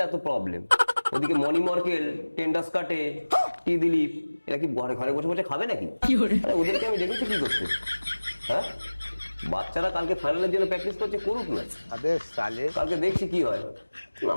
এত প্রবলেম। ওদিকে মণি মর্কেল, টেন্ডাস কাটে, টি দিলীপ, এরা কি ঘরে ঘরে বসে বসে খাবে নাকি? আরে ওদেরকে আমি দেখেছি কি করতে। হ্যাঁ, বাচ্চারা কালকে ফাইনালের জন্য প্র্যাকটিস করছে, করুক না, কালকে দেখছি কি হয়।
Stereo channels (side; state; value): both; inverted; correlation -1.00